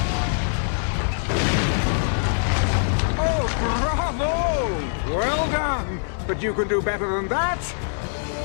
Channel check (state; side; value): silent; right; digital silence